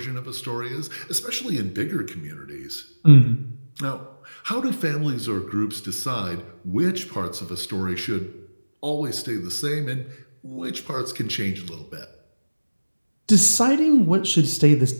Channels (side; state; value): both; inverted; correlation -1.00